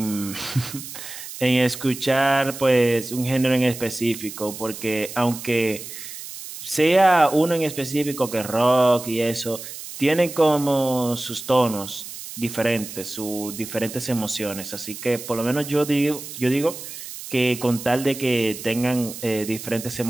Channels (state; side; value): noise; right; hiss, 11 dB below the sound